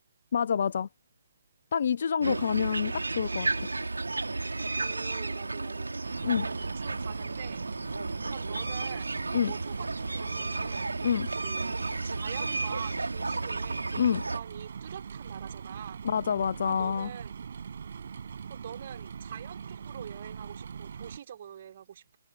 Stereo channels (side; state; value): both; inverted; correlation -0.83